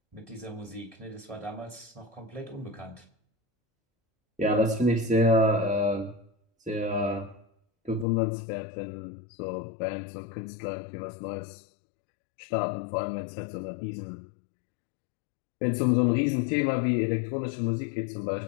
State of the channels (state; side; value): drops out; right; at 8.1 s